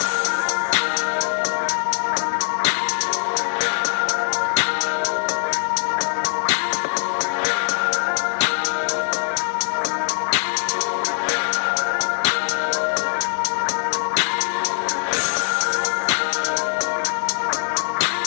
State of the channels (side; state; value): right; silent; 57 dB below the other